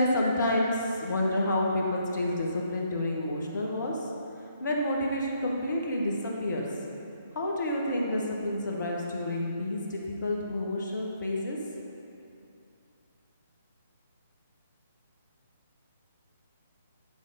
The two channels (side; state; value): both; inverted; correlation -0.71